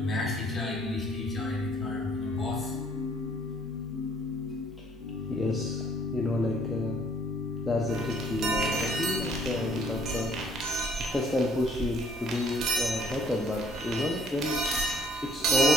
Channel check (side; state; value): both; normal; correlation 0.61